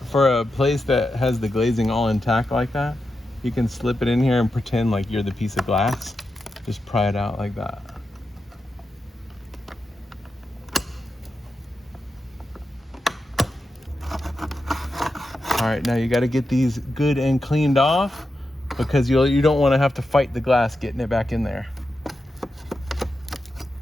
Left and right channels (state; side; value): normal; both; correlation 0.89